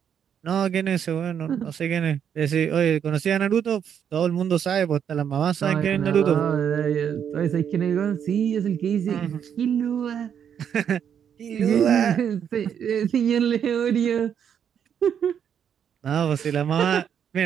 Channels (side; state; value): left; quieter; 8.3 dB